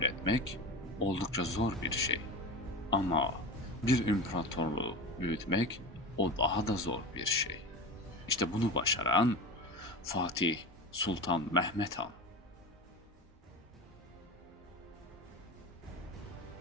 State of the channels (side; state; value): both; normal; correlation 0.28